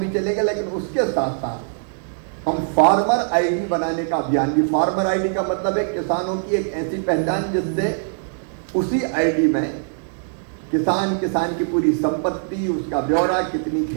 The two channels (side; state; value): left; silent; digital silence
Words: चलेगा, लेकिन उसके साथ साथ हम फार्मर आईडी बनाने का अभियान भी। फार्मर आईडी का मतलब है किसानों की एक ऐसी पहचान जिससे उसी आईडी में किसान की पूरी संपत्ति, उसका ब्यौरा, कितनी